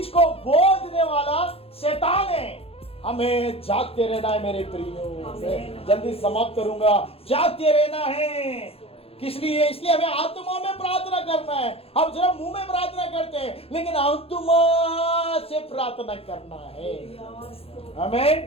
को बो देने वाला शैतान है। हमें जागते रहना है मेरे प्रियो। जल्दी समाप्त करूंगा। जागते रहना है किस लिए, इसलिए हमें आत्मा में प्रार्थना करना है। हम सिर्फ मुंह में प्रार्थना करते हैं, लेकिन आत्मा से प्रार्थना करना है।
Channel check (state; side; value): late; right; 0.28 ms